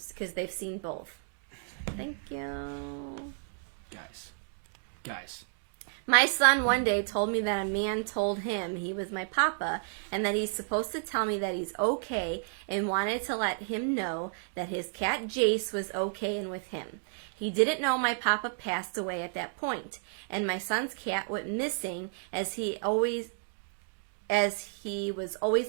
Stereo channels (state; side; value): silent; left; digital silence